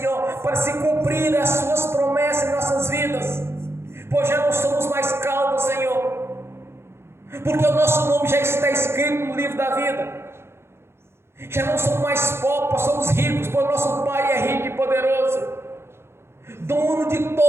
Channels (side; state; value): left; late; 0.12 ms